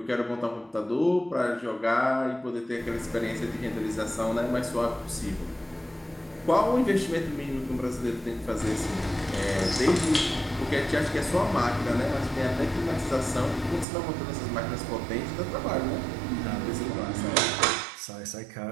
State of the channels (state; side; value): drops out; left; at 13.9 s